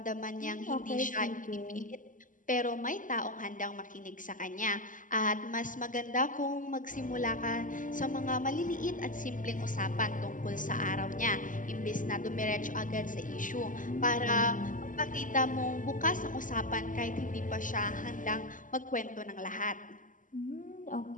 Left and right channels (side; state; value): right; late; 0.38 ms